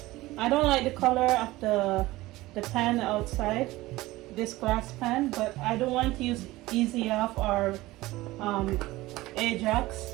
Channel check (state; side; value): quieter; left; 18.6 dB